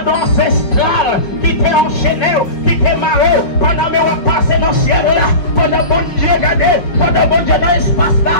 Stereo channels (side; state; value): right; late; 5.2 ms